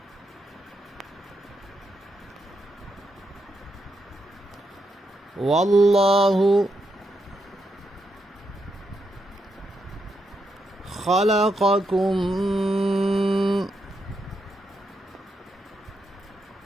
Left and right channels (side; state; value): both; normal; correlation 0.82